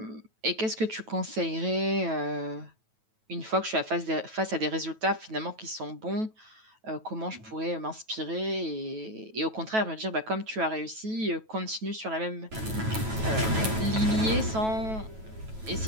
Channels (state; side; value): late; left; 9.2 ms